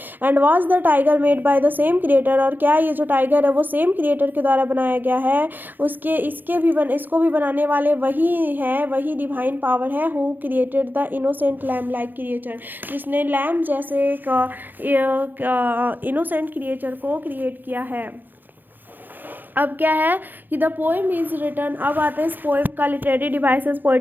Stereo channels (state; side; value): late; left; 0.089 ms